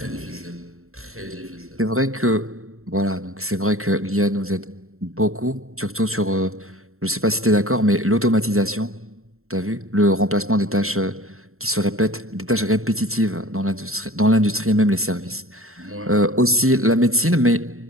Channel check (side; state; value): left; late; 0.62 ms